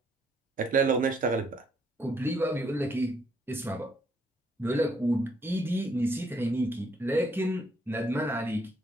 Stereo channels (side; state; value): both; normal; correlation 0.69